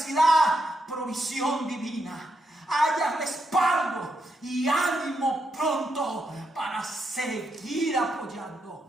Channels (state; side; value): normal; both; correlation 0.81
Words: provisión divina. Haya respaldo y ánimo pronto para seguir